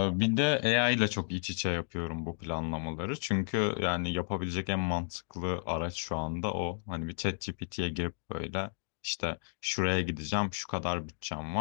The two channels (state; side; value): silent; right; digital silence